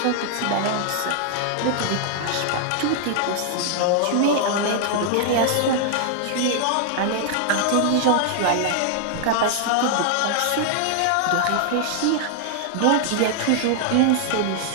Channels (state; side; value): different; both; correlation 0.00